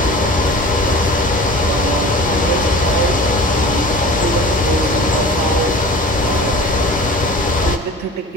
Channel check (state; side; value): normal; both; correlation 0.39